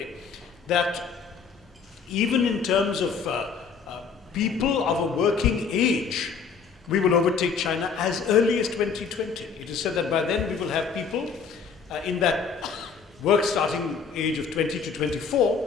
that even in terms of people of a working age, we will overtake China as early as 2020. It is said that by then we will have people in that work starting age of 20 to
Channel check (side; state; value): right; quieter; 5.8 dB